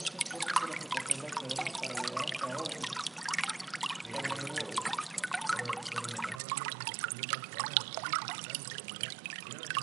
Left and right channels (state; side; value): drops out; left; at 6.4 s